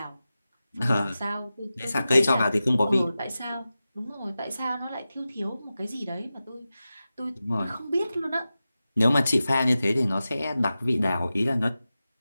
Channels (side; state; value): both; inverted; correlation -0.94